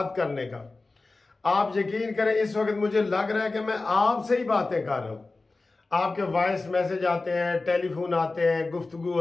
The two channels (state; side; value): quieter; right; 3.5 dB